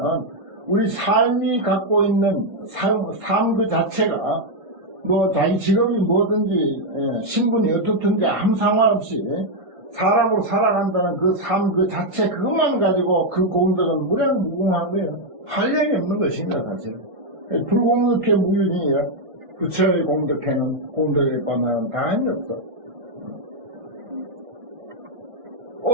우리 삶이 갖고 있는 삶 그 자체가 뭐 자기 직업이 뭐든지 신분이 어떻든지 아무 상관없이 사람으로 살아간다는 그 삶 그 자체 그것만 가지고 그 공덕은 무량무궁한 거예요. 할 일이 없는 것입니다. 사실 불공덕해 무유진이에요. 부처의 공덕회는 공덕에 관한 다함이 없어.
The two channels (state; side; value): late; left; 1.5 ms